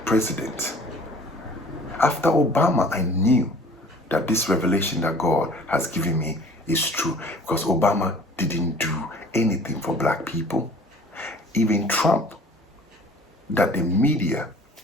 president. After Obama, I knew that this revelation that God has given me is true, because Obama didn't do anything for black people. Even Trump, that the media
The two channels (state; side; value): normal; both; correlation 0.49